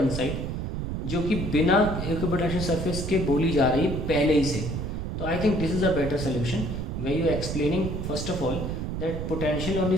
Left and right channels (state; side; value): noise; right; rumble, 3 dB below the sound